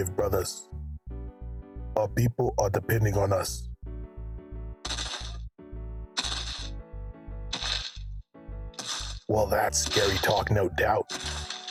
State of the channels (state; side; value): identical; both; correlation 1.00